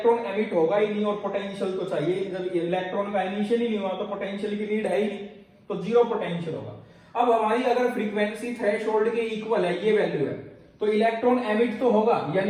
एमिट होगा ही नहीं और पोटेंशियल तो चाहिए। जब इलेक्ट्रॉन का एमिशन ही नहीं हुआ तो पोटेंशियल की नीड है ही नहीं, तो जीरो पोटेंशियल होगा। अब हमारी अगर फ्रीक्वेंसी थ्रेशोल्ड के इक्वल है ये वैल्यू है तो इलेक्ट्रॉन एमिट तो होगा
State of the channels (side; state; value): both; identical; correlation 1.00